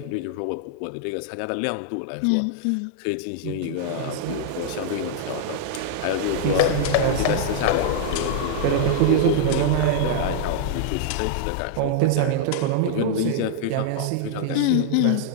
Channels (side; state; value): both; different; correlation -0.01